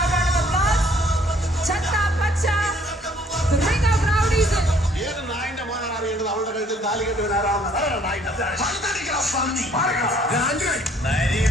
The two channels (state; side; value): normal; both; correlation 0.61